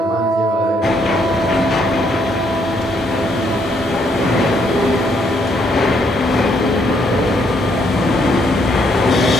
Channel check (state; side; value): normal; both; correlation 0.71